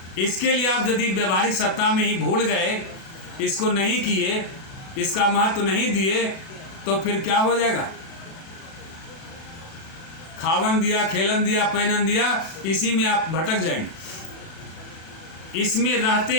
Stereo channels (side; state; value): right; late; 37 ms